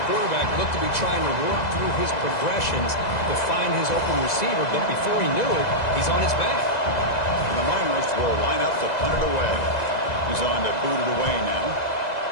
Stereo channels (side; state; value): right; late; 2.0 ms